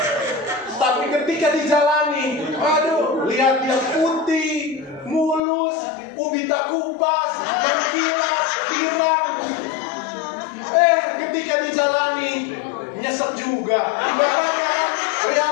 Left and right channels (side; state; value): right; drops out; at 5.4 s